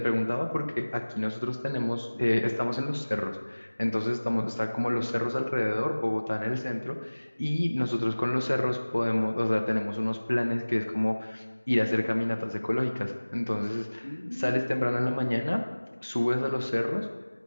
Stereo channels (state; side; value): inverted; both; correlation -1.00